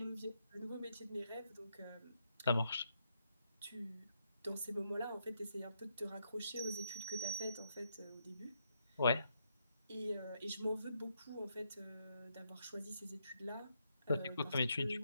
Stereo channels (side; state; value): both; inverted; correlation -0.78